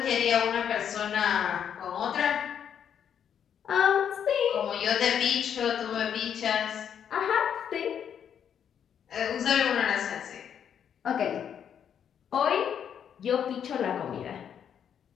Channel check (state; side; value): quieter; right; 8.5 dB